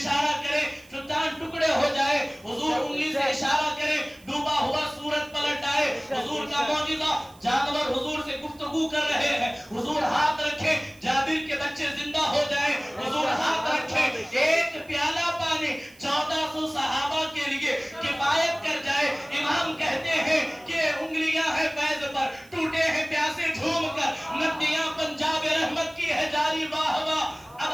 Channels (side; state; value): right; noise; hiss, 26 dB below the sound